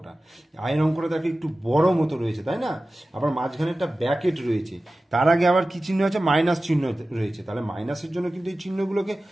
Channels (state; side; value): normal; both; correlation 0.95